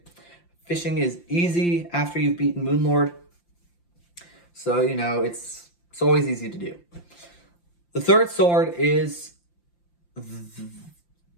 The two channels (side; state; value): right; late; 5.8 ms